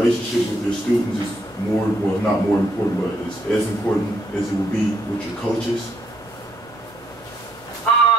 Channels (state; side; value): normal; both; correlation 0.72